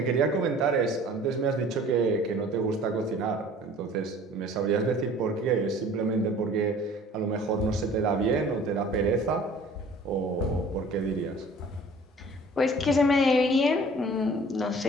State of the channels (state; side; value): normal; both; correlation 0.49